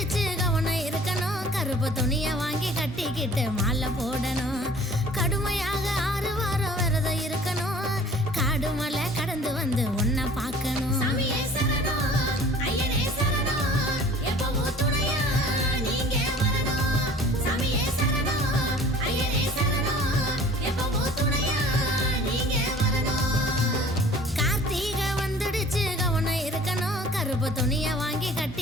கவனம் இருக்கணும் கருப்பு துணிய வாங்கி கட்டிக்கிட்டு மாலை போடணும் கடுமையாக 6 வாரம் விரதம் இருக்கணும் காடு மலை கடந்து வந்து உன்னை பார்க்கணும் கார்த்திகை வந்துடுச்சு கவனம் இருக்கணும் கருப்பு துணிய வாங்கி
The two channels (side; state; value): both; normal; correlation 0.49